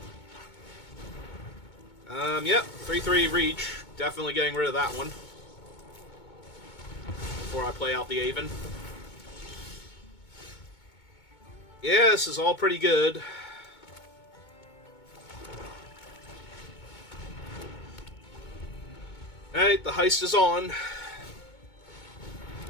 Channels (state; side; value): late; right; 2.2 ms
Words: Yep. 3/3 reach. Definitely getting rid of that one. Before I play out the Aven. Yeah, this is all pretty good. Alright, the heist is on.